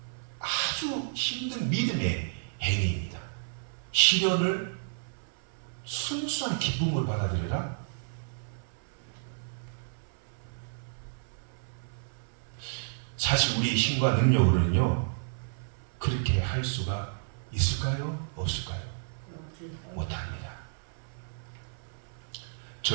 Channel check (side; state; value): left; silent; digital silence